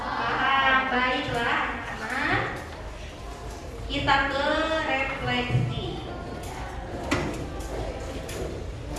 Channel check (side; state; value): both; identical; correlation 1.00